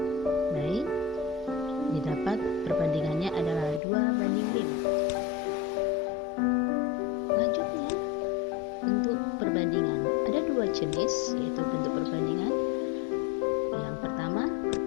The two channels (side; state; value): right; drops out; at 3.8 s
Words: Baik, didapat perbandingannya adalah 2:5. Lanjutnya, bentuk perbandingan. Ada dua jenis, yaitu bentuk perbandingan. Yang pertama,